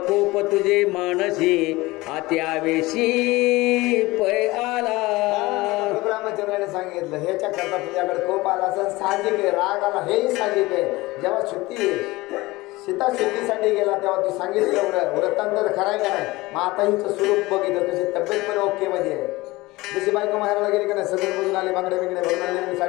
कोप तुझे मानसी आत्यावेशी पै आला. रामचंद्राने सांगितलं ह्याच्या करता तुझ्याकडे कोप आला असं साहजिक आहे, राग आला हेही साहजिक आहे. जेव्हा सीता शुद्धीसाठी गेला तेव्हा तू सांगितलं वृत्तांतर खरायला नाही. मग आता हिचं स्वरूप बघितलं कशी तब्येत पण ओके मध्ये आहे. जशी बायको माहेराला गेली का नाही, सगळं बघून आले बांगडे बिंगडे भरून आले,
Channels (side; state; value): right; quieter; 20.6 dB